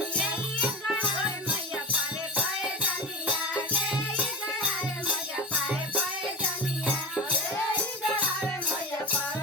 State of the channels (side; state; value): both; normal; correlation 0.27